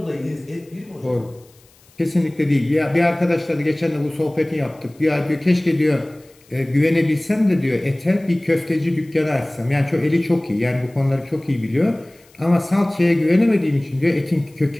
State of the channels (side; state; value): left; noise; hiss, 30 dB below the sound